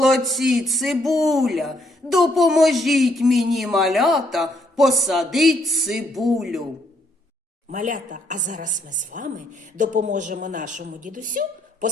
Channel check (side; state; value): both; normal; correlation 0.71